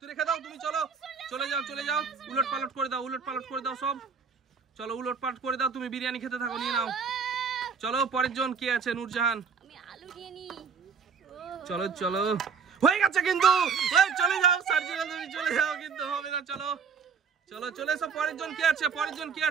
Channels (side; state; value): left; quieter; 5.9 dB